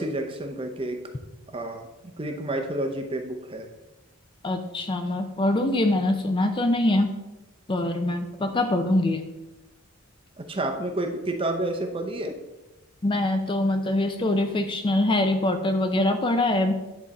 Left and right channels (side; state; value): both; normal; correlation 0.65